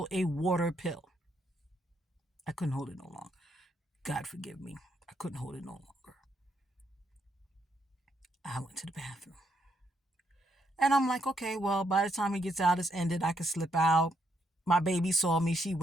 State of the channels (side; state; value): both; normal; correlation 0.76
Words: a water pill. I couldn't hold it no longer. God forgive me. I couldn't hold it no longer. I went to the bathroom. And I'm like, okay, well, by the time he gets out, it's ended. I can slip out. My baby saw me. She